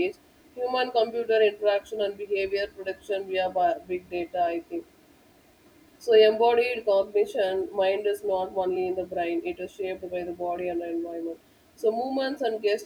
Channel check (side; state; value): both; identical; correlation 1.00